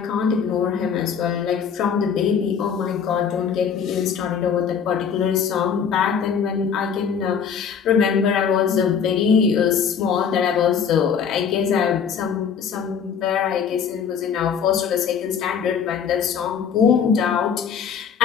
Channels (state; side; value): quieter; right; 7.1 dB